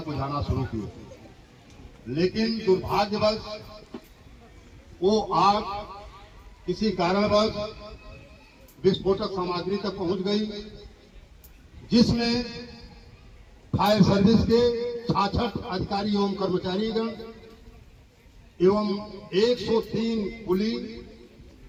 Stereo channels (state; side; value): identical; both; correlation 1.00